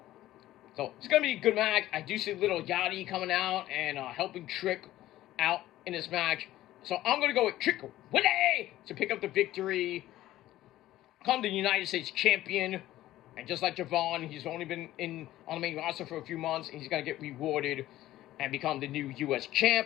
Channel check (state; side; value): quieter; right; 14.7 dB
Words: So, it's going to be a good match. I do see little Yachty coming out and helping Trick out in this match. So, I'm going to go with Trick Willie to pick up the victory. Become the United States champion. And just like Javon, he's only been on the main roster for a few months. And he's going to get rewarded and become the new U.S.